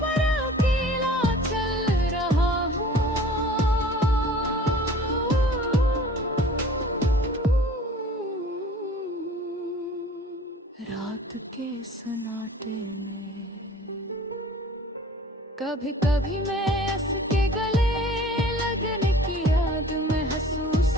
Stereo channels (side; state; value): both; normal; correlation 0.47